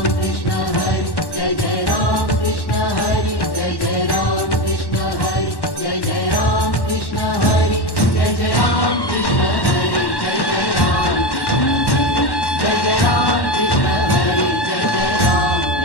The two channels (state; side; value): late; right; 1.1 ms